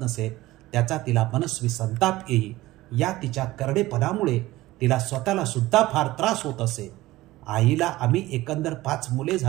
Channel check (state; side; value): quieter; left; 17.7 dB